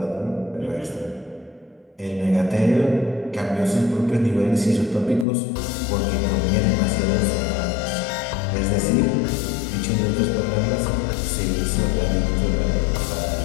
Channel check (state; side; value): drops out; right; at 5.2 s